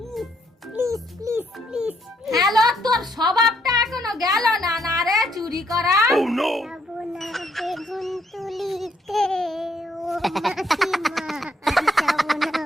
please please please. Hello, তোর স্বভাবটা এখনো গেল না না রে চুরি করা? যাব না বেগুন তুলিতে ও মাসিমা।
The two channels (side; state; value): both; normal; correlation 0.71